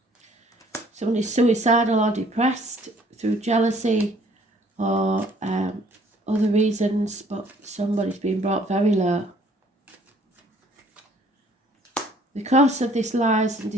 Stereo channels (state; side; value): normal; both; correlation 0.59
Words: Somebody's suicidal or depressed through jealousy or other reasons, but somebody's been brought very low. Because of this lies and